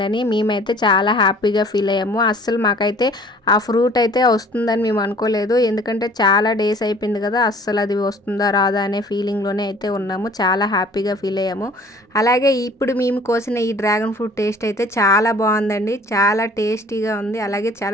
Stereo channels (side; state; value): both; normal; correlation 0.51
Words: మేమైతే చాలా హ్యాపీగా ఫీల్ అయ్యాము. అస్సలు మాకైతే ఆ ఫ్రూట్ అయితే వస్తుందని మేము అనుకోలేదు, ఎందుకంటే చాలా డేస్ అయిపోయింది కదా. అస్సలు అది వస్తుందా రాదా అనే ఫీలింగ్లోనే అయితే ఉన్నాము. చాలా హ్యాపీగా ఫీల్ అయ్యాము. అలాగే ఇప్పుడు మేము కోసిన ఈ డ్రాగన్ ఫ్రూట్ టేస్ట్ అయితే చాలా బాగుందండి. చాలా టేస్టీగా ఉంది, అలాగే